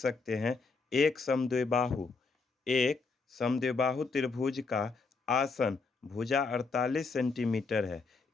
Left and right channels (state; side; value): quieter; right; 4.3 dB